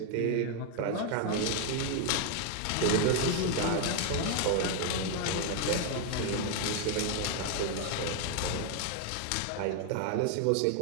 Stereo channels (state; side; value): different; both; correlation 0.00